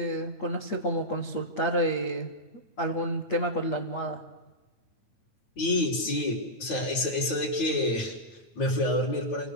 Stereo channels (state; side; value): late; right; 9.1 ms